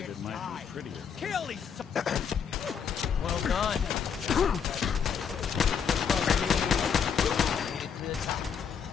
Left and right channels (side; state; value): right; quieter; 7.2 dB